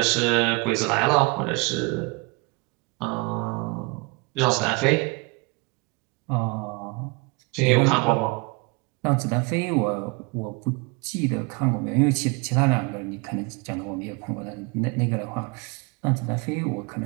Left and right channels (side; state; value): left; quieter; 28.3 dB